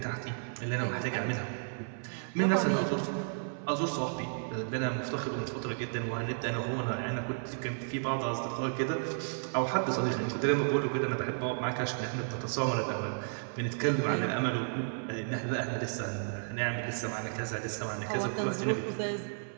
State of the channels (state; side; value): silent; left; 56 dB below the other